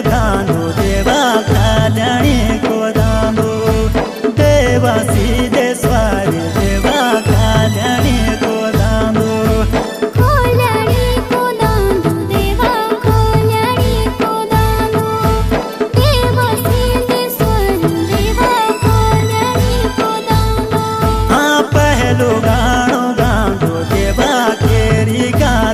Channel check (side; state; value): both; identical; correlation 1.00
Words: दांदो देवा कल्याणी को दांदो देवा सिद्धेश्वर देवा कल्याणी को दांदो कल्याणी को दांदो देवा कल्याणी को दांदो देवा सिद्धेश्वर देवा कल्याणी को दांदो हाँ पहलो गाणो गांदो देवा केरी